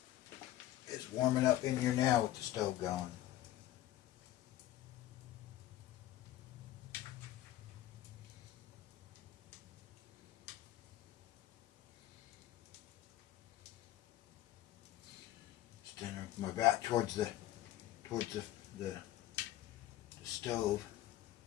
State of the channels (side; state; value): right; quieter; 14.0 dB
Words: It's warming up in here now with the stove going. Standing with my back towards the stove.